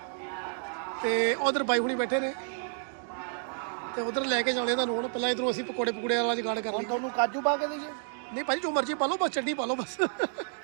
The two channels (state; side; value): silent; left; 58 dB below the other